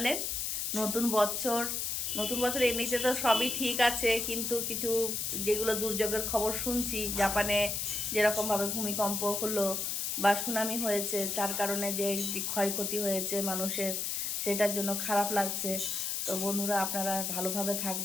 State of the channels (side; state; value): left; noise; hiss, 1 dB below the sound